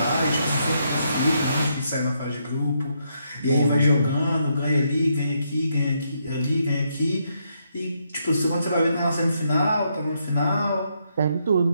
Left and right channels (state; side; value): inverted; both; correlation -0.77